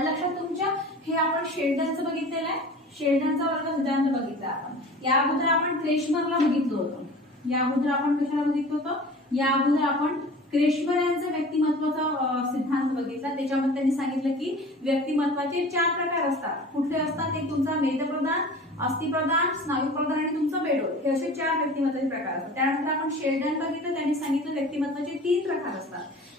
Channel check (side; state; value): both; normal; correlation 0.40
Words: लक्षात तुमच्या हे आपण शेल्डनचं बघितलेलं आहे, शेल्डनचा वर्ग सिद्धांत बघितला आपण, या अगोदर आपण क्रेशमरला बघितलं होतं, या अगोदर आपण कशाला बघितलं होतं, या अगोदर आपण क्रेशमर यांचा व्यक्तिमत्वाचा सिद्धांत बघितला। त्याच्यामध्ये त्यांनी सांगितलं की व्यक्तिमत्वाचे 4 प्रकार असतात, कुठले असतात, एक तुमचा मेदप्रधान, अस्थिप्रधान, स्नायूप्रधान आणि तुमचं बेडोल, हे असे 4 व्यक्तिमत्वाचे प्रकार असतात। त्यानंतर आपण शेल्डन बघितलं, त्यांनी सांगितलं व्यक्तिमत्वाचे 3 प्रकार असतात,